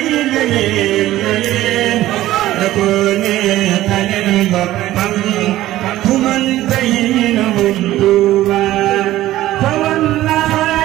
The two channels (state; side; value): quieter; left; 15.0 dB